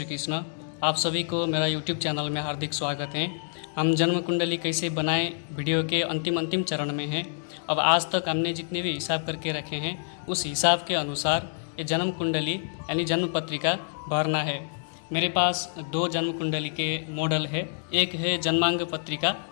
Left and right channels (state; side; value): silent; right; digital silence